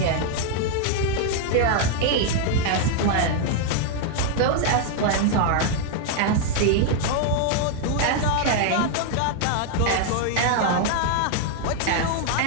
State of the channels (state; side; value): different; both; correlation 0.00